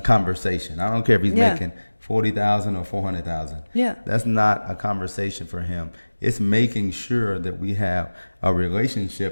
I don't care if he's Yeah. making 40,000 or 400,000. Yeah. That's not a conversation for him. It's making sure that we have a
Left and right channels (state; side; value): inverted; both; correlation -1.00